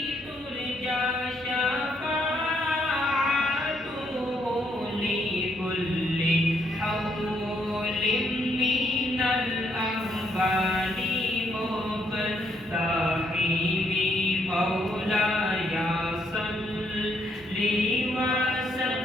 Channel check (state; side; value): normal; both; correlation 0.73